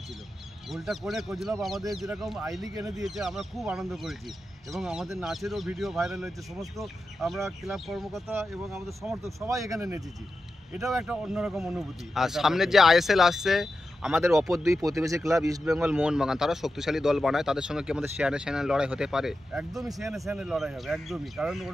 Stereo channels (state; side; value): normal; both; correlation 0.91